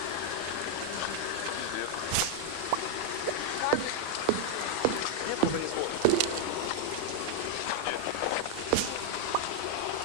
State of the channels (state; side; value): different; both; correlation 0.00